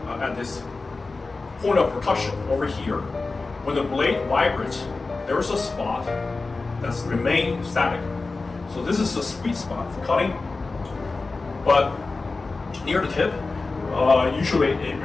at this point of percussion over here. When the blade vibrates, there is a spot that's remained static. So this is the sweet spot for cutting. But near the tip, usually it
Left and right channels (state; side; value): quieter; right; 3.7 dB